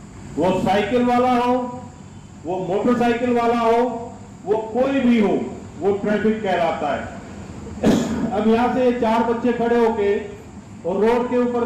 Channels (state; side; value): identical; both; correlation 1.00